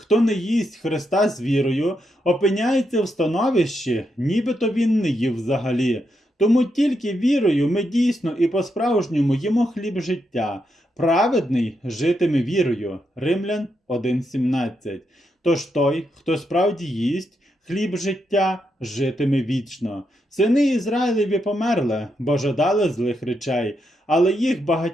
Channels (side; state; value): both; normal; correlation 0.82